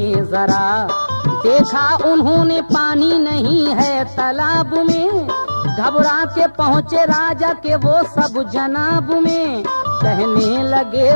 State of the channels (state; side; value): inverted; both; correlation -1.00